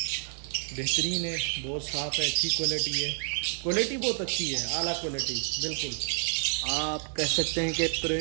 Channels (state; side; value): silent; left; 55 dB below the other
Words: बेहतरीन है, बहुत साफ़ है, अच्छी क्वालिटी है। क्वालिटी बहुत अच्छी है, आला क्वालिटी, बिल्कुल आप कह सकते हैं कि